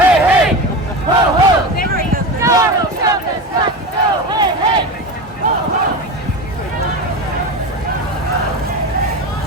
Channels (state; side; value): normal; both; correlation 0.24